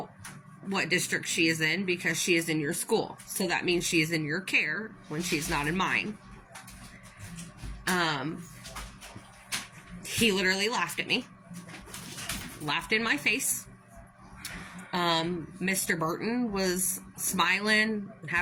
what district she is in because she is in your school. So that means she is in your care when she's not in mine. He literally laughed at me. Laughed in my face. Mr. Burton was smiling and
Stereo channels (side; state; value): both; identical; correlation 1.00